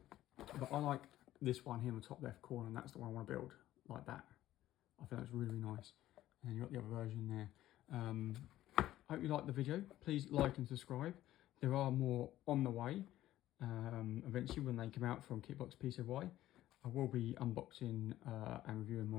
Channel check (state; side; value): quieter; right; 14.1 dB